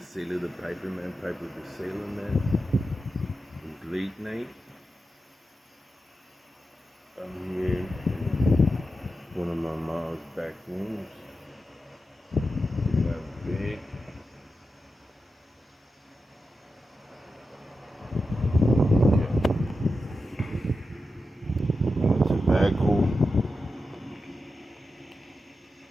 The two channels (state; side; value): normal; both; correlation 0.90